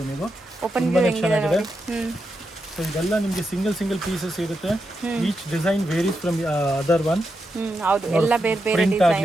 ನೀವು. ಓಪನ್ ವ್ಯೂ ಹೆಂಗಿದೆ. ಸೊ ಇದೆಲ್ಲ ನಿಮಗೆ ಸಿಂಗಲ್ ಪೀಸಸ್ ಇರುತ್ತೆ. Each design varies from other one. ಹೌದು, ಎಲ್ಲ ಬೇರೆ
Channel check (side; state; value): both; normal; correlation 0.86